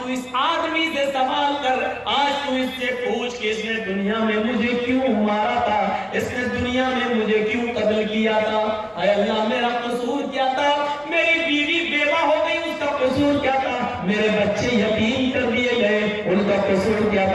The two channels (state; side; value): identical; both; correlation 1.00